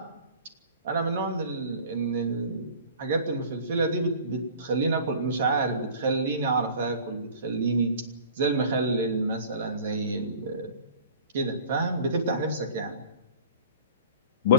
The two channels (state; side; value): inverted; both; correlation -0.45